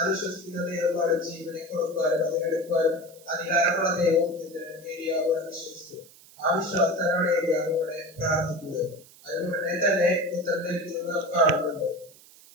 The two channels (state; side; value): noise; right; hiss, 23 dB below the sound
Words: വിശ്വസിക്കുന്ന ദൈവമാണ് ജീവനെ കൊടുക്കാനും അത് എടുക്കാനും അധികാരമുള്ള ദൈവം എന്ന് ഏലിയാവ് വിശ്വസിച്ചു. ആ വിശ്വാസത്തിലാണ് ഏലിയാവ് ഇവിടെ പ്രാർത്ഥിക്കുന്നത്. അതുകൊണ്ടേ തന്നെ ഉത്തരം ലഭിക്കുന്നത് നാം കാണുന്നുണ്ട്.